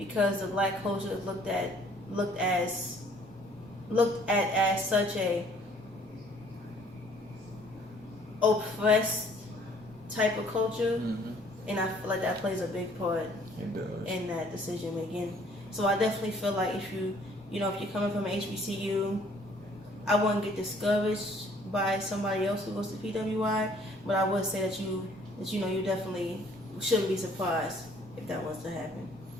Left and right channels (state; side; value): normal; both; correlation 0.59